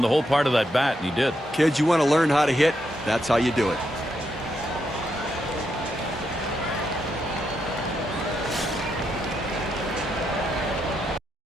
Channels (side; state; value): both; normal; correlation 0.81